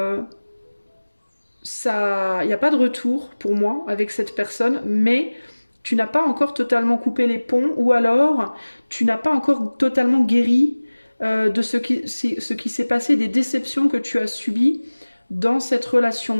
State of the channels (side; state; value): both; inverted; correlation -1.00